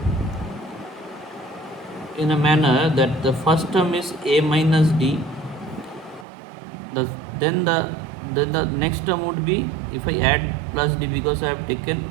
in a manner that the first term is a minus d, the then the then the next term would be, if I add plus d, because I have taken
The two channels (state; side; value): drops out; left; at 6.2 s